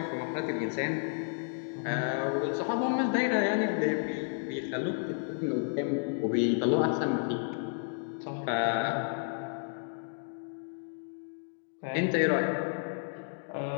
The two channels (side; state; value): right; silent; 57 dB below the other